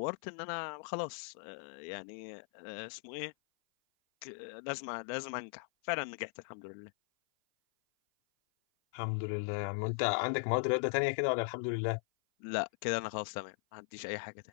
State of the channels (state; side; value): silent; right; 52 dB below the other